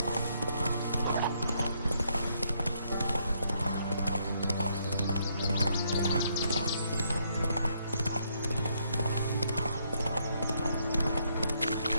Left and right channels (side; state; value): both; inverted; correlation -0.73